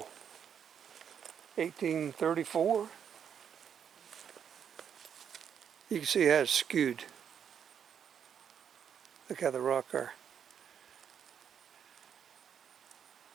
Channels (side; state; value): left; quieter; 8.1 dB